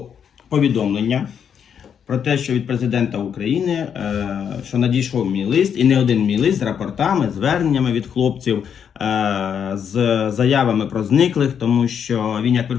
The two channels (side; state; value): right; quieter; 7.8 dB